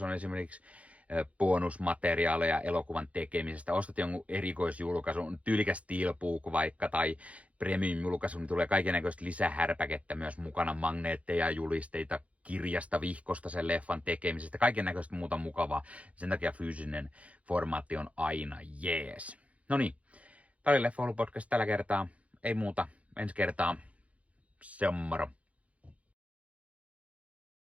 on esimerkiksi bonusmateriaaleja elokuvan tekemisestä. Ostat jonkun erikoisjulkaisun, tyylikäs steelbook vaikka tai premium-julkaisu, niin tulee kaikennäköistä lisähärpäkettä myös mukana, magneetteja, julisteita, kirjasta, vihkosta sen leffan tekemisestä, kaikennäköistä muuta mukavaa. Sen takia fyysinen formaatti on aina jees. No niin, tämä oli Leffahullu podcast tällä kertaa. Ei muuta, ensi kertaa. Se on moro.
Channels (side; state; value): left; late; 0.065 ms